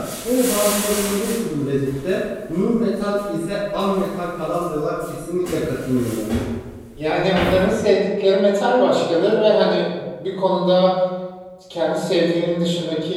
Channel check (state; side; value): identical; both; correlation 1.00